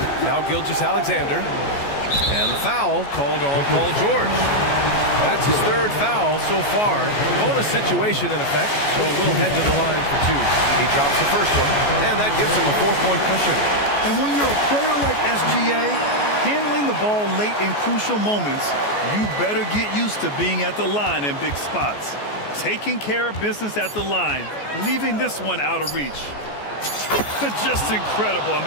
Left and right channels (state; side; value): late; right; 14 ms